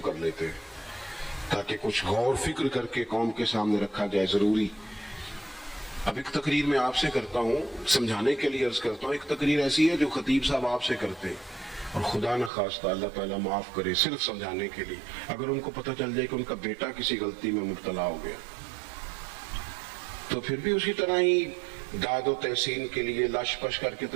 کر لیتے ہیں تاکہ کچھ غور فکر کر کے قوم کے سامنے رکھا جائے, ضروری. اب ایک تقریر میں آپ سے کرتا ہوں, سمجھانے کے لیے عرض کرتا ہوں. ایک تقریر ایسی ہے جو خطیب صاحب آپ سے کرتے ہیں, اور خدا نہ خواستہ اللہ تعالیٰ معاف کرے, صرف سمجھانے کے لیے. اگر ان کو پتہ چل جائے کہ ان کا بیٹا کسی غلطی میں مبتلا ہو گیا تو پھر بھی اسی طرح ہی داد و تحسین کے لیے لاش پش کر کے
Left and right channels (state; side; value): drops out; left; at 12.5 s